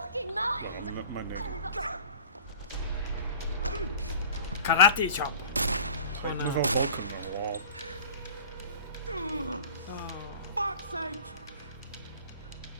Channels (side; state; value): both; inverted; correlation -0.43